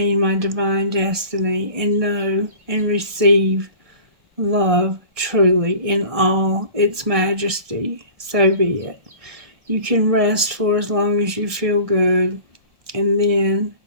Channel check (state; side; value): late; left; 1.6 ms